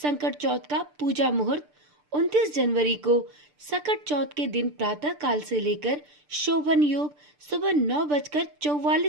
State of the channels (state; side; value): late; left; 6.8 ms